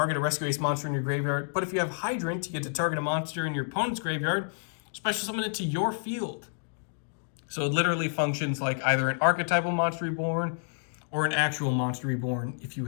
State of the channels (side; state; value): right; silent; digital silence